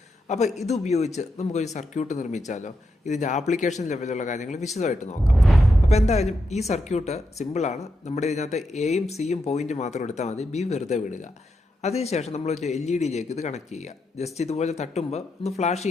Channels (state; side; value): normal; both; correlation 0.84